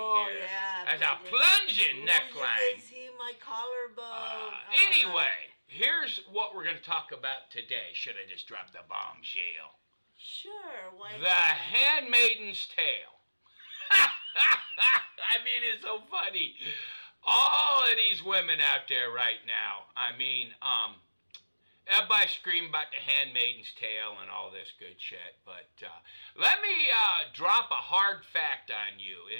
here. yeah, That's a plunging. plunging Ooh, you can neckline. see my collarbone. Oh my Anyway, God. here's what we're going to talk about today. Should I just drop the bombshell? Sure, why The not? Handmaiden's Tale. I mean, it's so funny. All of these women out there right now. I mean, everybody screaming about the Handmaiden's Tale and all this good shit. But let me drop a hard fact on you.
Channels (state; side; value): inverted; both; correlation -1.00